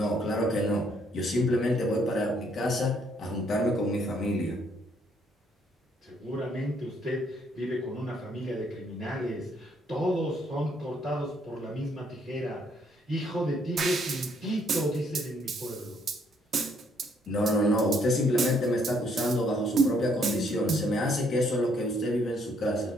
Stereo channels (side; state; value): both; normal; correlation 0.68